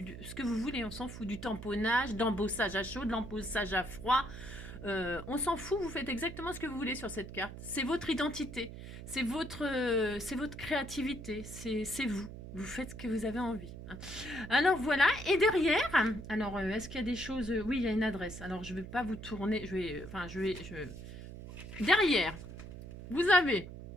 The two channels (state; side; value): noise; right; hum, 12 dB below the sound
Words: que vous voulez. On s'en fout. Du tamponnage, d'embossage à chaud, de l'embossage à froid. On s'en fout. Vous faites exactement ce que vous voulez sur cette carte. C'est votre identité. C'est votre créativité. C'est vous. Vous faites ce que vous avez envie. Hein. Alors voilà, et derrière, alors est-ce qu'il y a des choses? Oui, il y a une adresse. Alors je ne vais pas vous tourner, derrière, vous avez